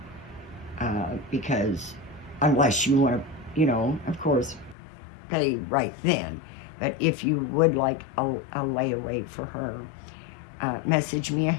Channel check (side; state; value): right; drops out; at 4.8 s